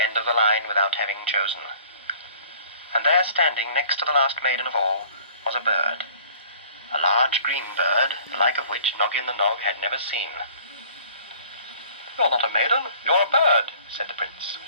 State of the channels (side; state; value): both; inverted; correlation -0.51